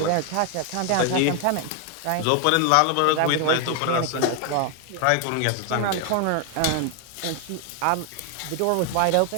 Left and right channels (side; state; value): both; different; correlation 0.00